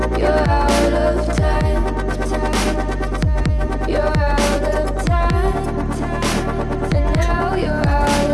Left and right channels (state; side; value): identical; both; correlation 1.00